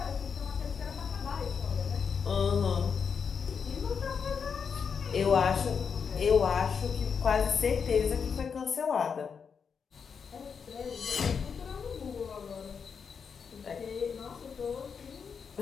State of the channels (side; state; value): right; quieter; 6.3 dB